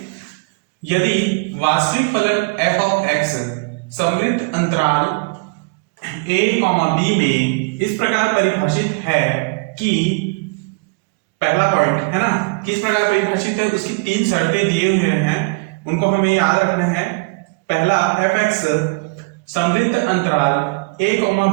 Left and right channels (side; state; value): left; quieter; 28.1 dB